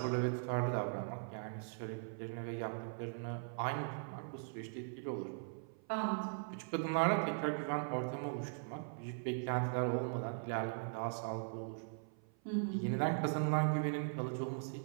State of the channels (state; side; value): silent; left; 51 dB below the other